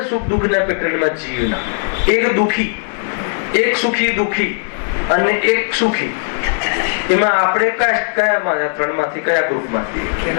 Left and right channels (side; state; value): right; silent; digital silence